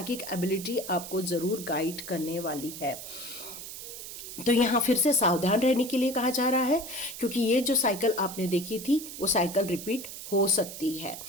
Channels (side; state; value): right; noise; hiss, 10 dB below the sound